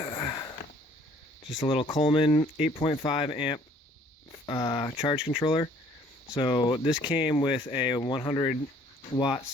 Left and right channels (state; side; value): normal; both; correlation 0.58